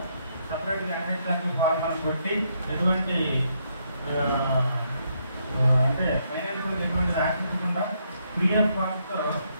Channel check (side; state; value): both; inverted; correlation -0.75